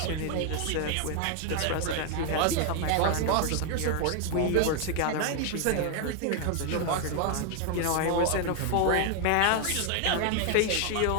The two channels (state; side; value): different; both; correlation 0.00